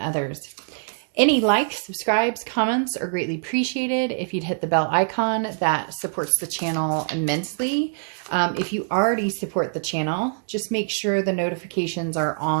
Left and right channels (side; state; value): left; silent; digital silence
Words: Any likes, subscribes, comments are greatly appreciated. If you'd hit the bell icon, that supports the channel immensely. If you already support the channel, just make sure the notifications are